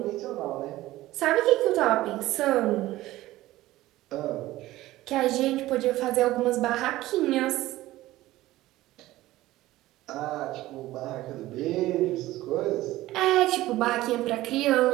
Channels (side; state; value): left; quieter; 16.6 dB